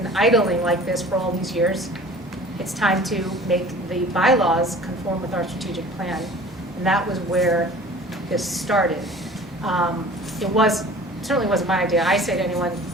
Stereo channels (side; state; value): both; normal; correlation 0.45